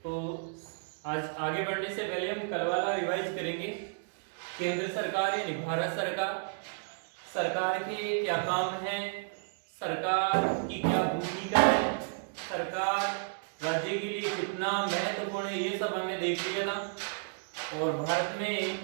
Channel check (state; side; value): silent; left; digital silence